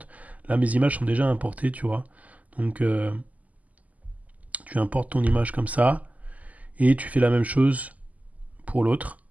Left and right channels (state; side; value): late; left; 0.075 ms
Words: Là, mes images sont déjà importées, tu vois, donc tu importes ton image comme ça, et tu fais la même chose pour l'autre,